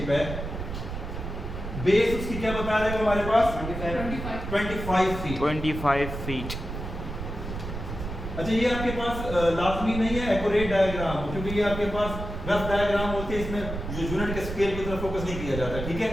है, बेस उसकी क्या बता रहे हो हमारे पास 25 फीट। 25 फीट। अच्छा, ये आपके पास लाजमी नहीं है एक्यूरेट डायग्राम, क्योंकि ये आपके पास रफ डायग्राम होते हैं, इसमें जो यूनिट के स्केल की तरफ फोकस नहीं किया जाता। ठीक है,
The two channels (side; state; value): right; noise; rumble, 7 dB below the sound